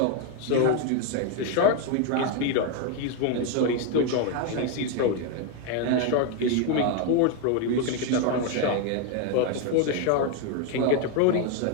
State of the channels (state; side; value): different; both; correlation 0.01